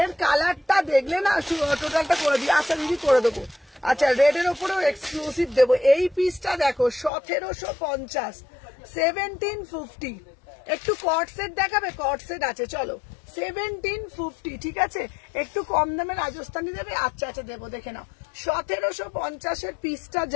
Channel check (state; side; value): drops out; right; at 7.1 s